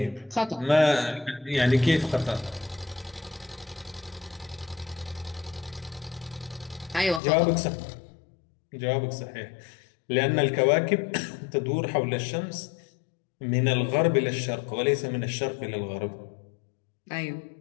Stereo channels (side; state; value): right; drops out; at 7.2 s